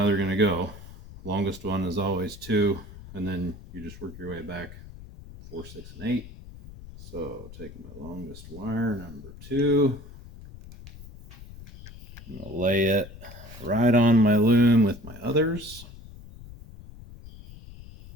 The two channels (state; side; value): noise; left; rumble, 16 dB below the sound